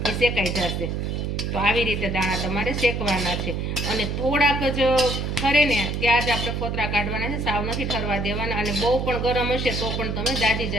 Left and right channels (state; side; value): noise; right; hum, 2 dB below the sound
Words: એ શેકાઈ જશે. તો આવી રીતે દાણા તમારે શેકવાના છે, અને થોડાક જ ઠરે ને ત્યાં જ આપણે ફોતરા કાઢવાના છે, સાવ નથી ઠરવા દેવાના. અને બહુ પણ ગરમ હશે તો પણ તમે દાજી